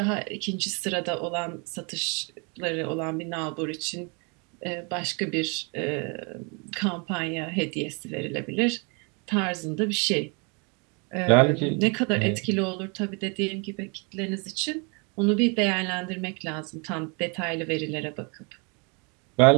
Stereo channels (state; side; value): quieter; left; 33.3 dB